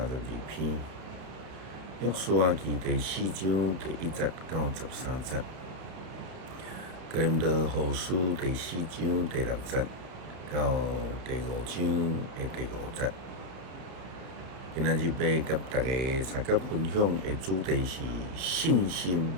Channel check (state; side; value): late; left; 32 ms